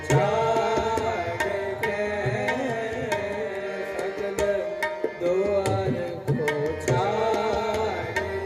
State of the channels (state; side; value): identical; both; correlation 1.00